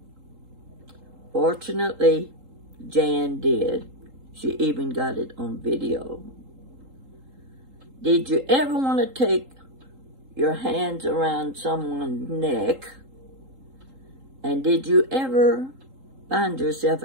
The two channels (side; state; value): left; late; 3.8 ms